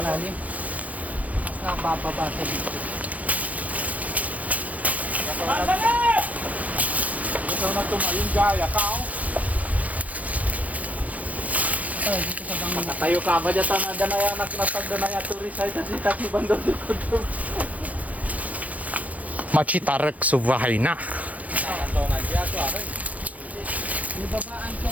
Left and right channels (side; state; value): left; late; 0.073 ms